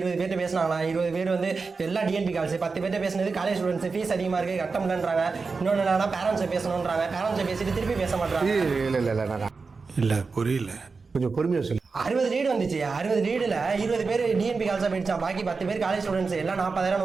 பேர்ட்ட பேசினாங்களா? 20 பேர் வந்து எல்லாம் டிஎன்பி கால்ஸ். 10 பேர்ட்ட பேசினது காலேஜ் ஸ்டூடெண்ட்ஸ் ஃபீஸ் அதிகமா இருக்கு கட்ட முடியலன்றாங்க. இன்னொன்னு என்னன்னா பேரண்ட்ஸை பேசணும்ன்றாங்க. பேரண்ட்ஸை பேசிட்டு திருப்பி பேச மாட்டாங்க. இல்ல புரியல, கொஞ்சம் பொறுமையா சொல்லு. 60 லீடு வந்துச்சு. 60 லீடுல 20 பேர் டிஎன்பி கால்ஸா போயிடுச்சான். பாக்கி 10 பேர் காலேஜ் ஸ்டூடெண்ட்ஸ் எல்லாம் 40,000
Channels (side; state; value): left; quieter; 4.5 dB